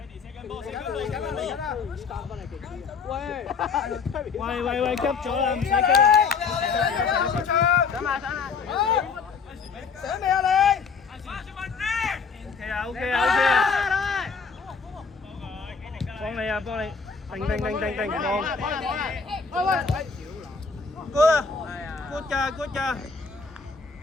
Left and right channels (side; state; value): right; quieter; 5.3 dB